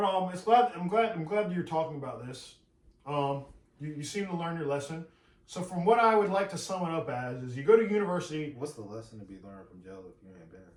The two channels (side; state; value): both; identical; correlation 1.00